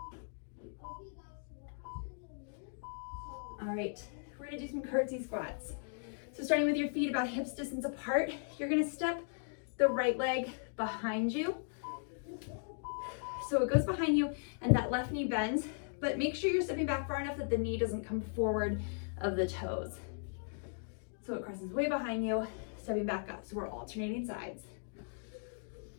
All right, we're gonna do some curtsy squats. So starting with your feet about hips distance apart, you're gonna step the right leg behind you. So it goes behind you and that left knee bends, but make sure you're stepping back far enough that the knee doesn't come forward of the toes. So it crosses way behind you, stepping back up. So we're alternating sides.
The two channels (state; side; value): silent; right; digital silence